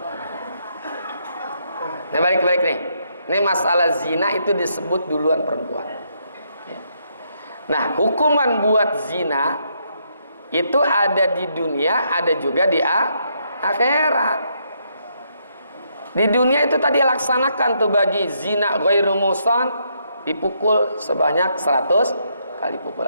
Nah balik nih. Ini masalah zina itu disebut duluan perempuan. Nah, hukuman buat zina itu ada di dunia, ada juga di akhirat. Di dunia itu tadi laksanakan tuh bagi zina ghairu muhsan dipukul sebanyak 100 kali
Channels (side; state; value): both; inverted; correlation -0.75